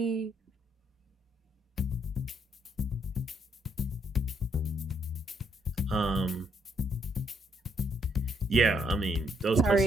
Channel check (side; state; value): both; normal; correlation 0.72